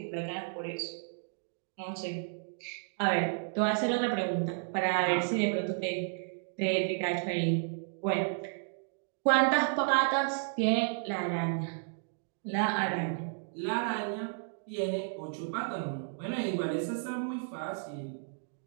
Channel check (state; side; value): silent; left; digital silence